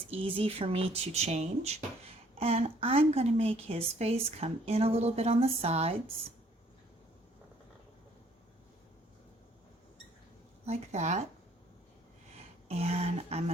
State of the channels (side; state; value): both; normal; correlation 0.62